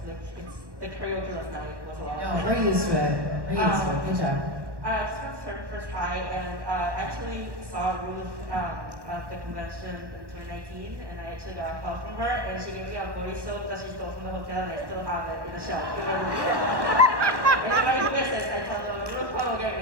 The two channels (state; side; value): late; left; 1.2 ms